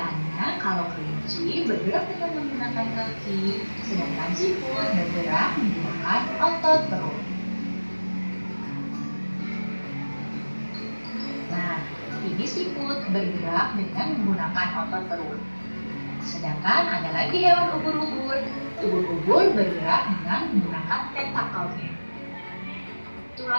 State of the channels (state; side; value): inverted; both; correlation -1.00